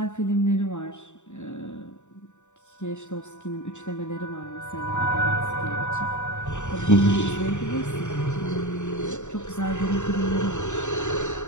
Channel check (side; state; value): right; late; 0.84 ms